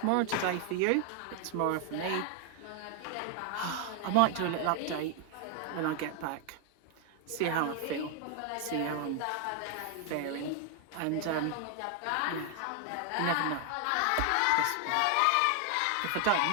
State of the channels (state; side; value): different; both; correlation 0.00